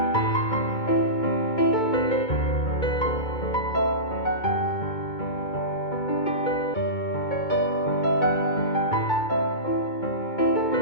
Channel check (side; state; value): right; late; 2.2 ms